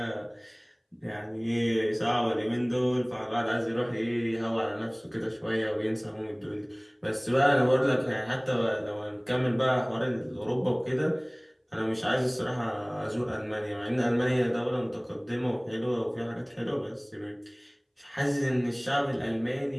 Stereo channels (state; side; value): identical; both; correlation 1.00